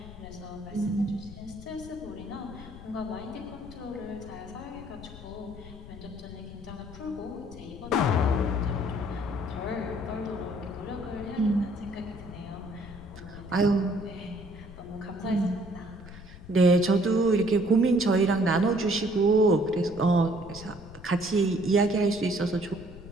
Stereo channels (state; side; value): noise; left; rumble, 16 dB below the sound